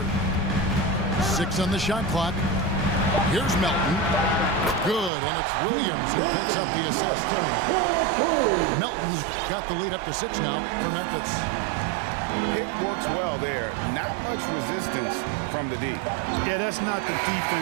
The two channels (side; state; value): left; drops out; at 5.1 s